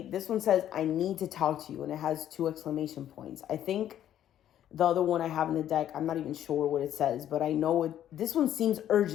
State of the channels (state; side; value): quieter; right; 11.1 dB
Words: This one says, I need to talk to you, and it has 2 exclamation points. I think the other one I have in the deck, I'm not even sure what it says, but I know this one seems